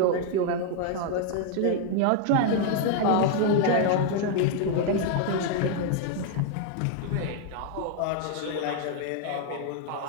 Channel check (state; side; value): different; both; correlation 0.00